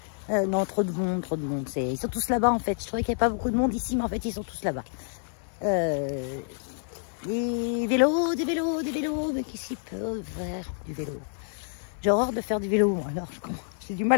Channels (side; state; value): right; silent; 58 dB below the other